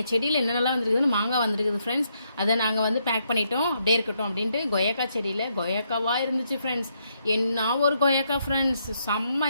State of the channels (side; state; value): both; inverted; correlation -0.76